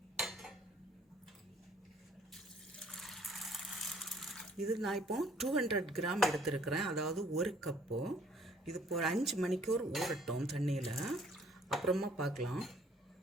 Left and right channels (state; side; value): normal; both; correlation 0.59